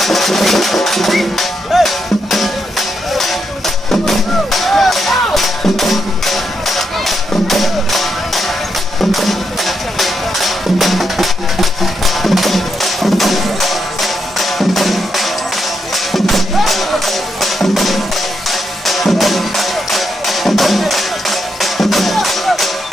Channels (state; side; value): normal; both; correlation 0.81